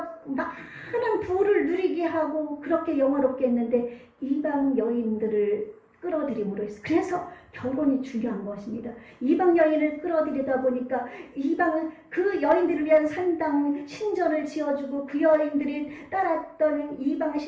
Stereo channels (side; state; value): both; identical; correlation 1.00